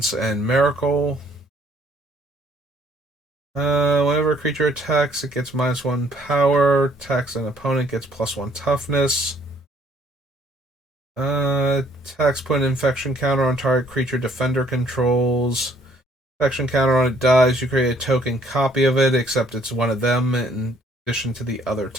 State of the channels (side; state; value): both; normal; correlation 0.63